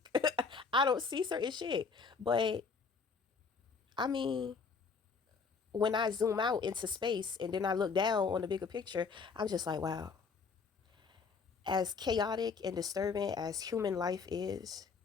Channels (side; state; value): right; quieter; 5.1 dB